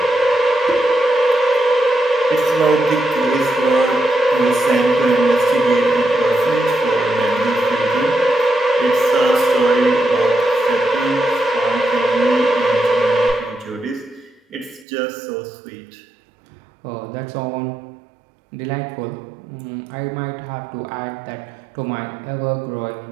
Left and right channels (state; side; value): drops out; left; at 14.9 s